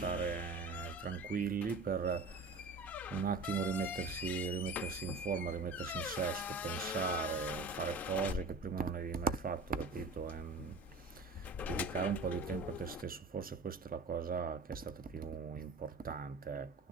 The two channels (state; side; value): quieter; left; 3.2 dB